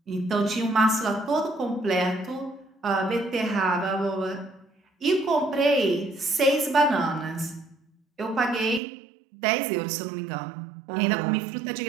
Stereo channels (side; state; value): left; drops out; at 8.8 s